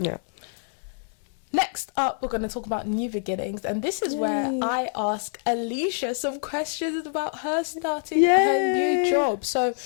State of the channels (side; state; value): right; silent; 61 dB below the other